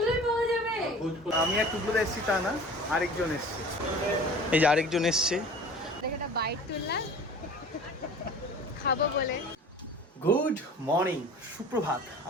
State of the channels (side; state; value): both; normal; correlation 0.42